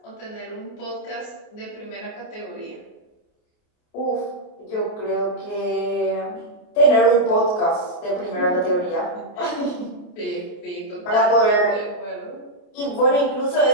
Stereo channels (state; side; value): late; right; 28 ms